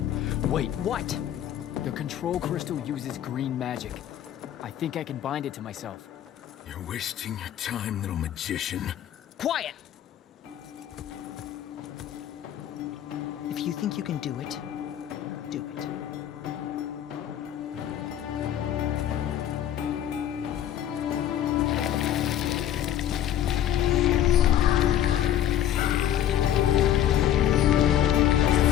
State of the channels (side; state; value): right; quieter; 11.0 dB